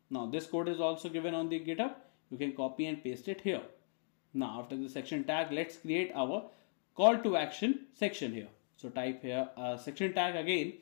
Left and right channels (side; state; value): right; silent; digital silence